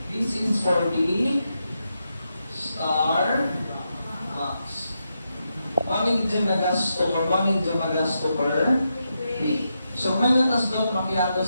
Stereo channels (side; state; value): both; inverted; correlation -0.85